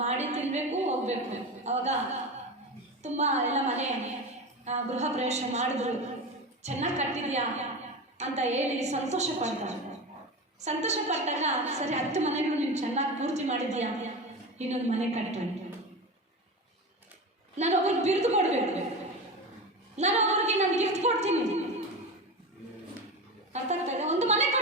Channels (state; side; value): normal; both; correlation 0.24